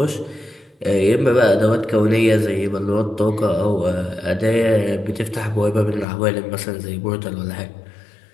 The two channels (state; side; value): drops out; right; at 6.1 s